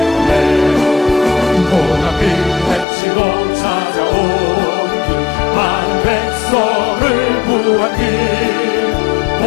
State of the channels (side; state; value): right; drops out; at 2.9 s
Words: 고난비 헤치고 찾아온 길 많은 백성을 구한 길